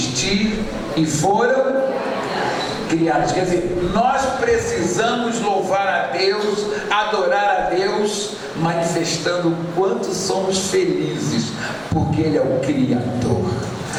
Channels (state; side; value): identical; both; correlation 1.00